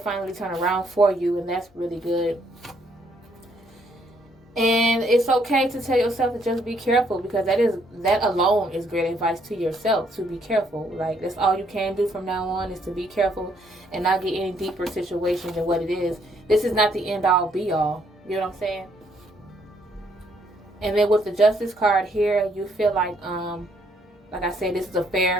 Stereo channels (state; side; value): normal; both; correlation 0.69